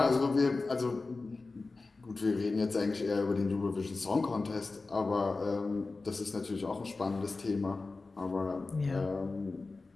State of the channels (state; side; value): quieter; right; 3.7 dB